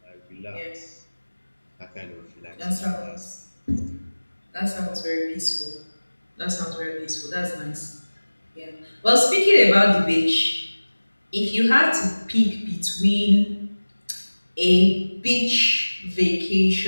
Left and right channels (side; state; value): both; inverted; correlation -1.00